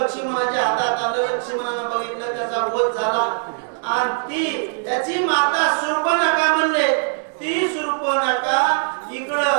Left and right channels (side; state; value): left; silent; digital silence